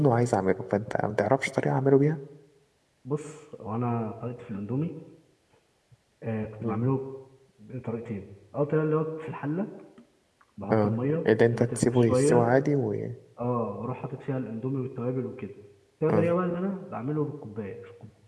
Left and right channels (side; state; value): both; identical; correlation 1.00